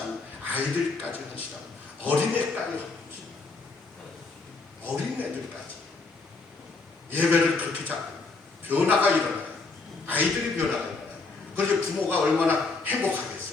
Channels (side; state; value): right; quieter; 4.0 dB